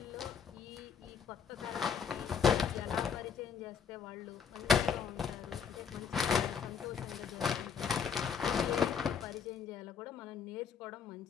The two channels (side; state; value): right; quieter; 6.9 dB